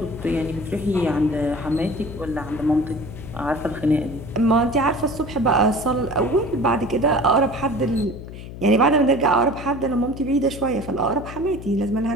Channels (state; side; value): noise; left; hum, 12 dB below the sound